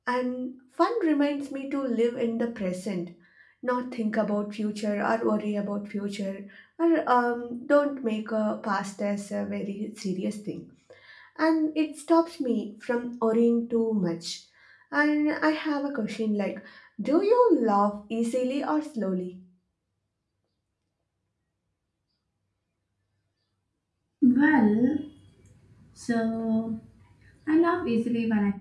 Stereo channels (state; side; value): identical; both; correlation 1.00